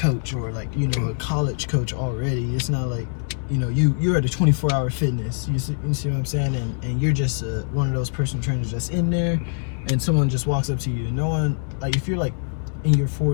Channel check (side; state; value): right; silent; digital silence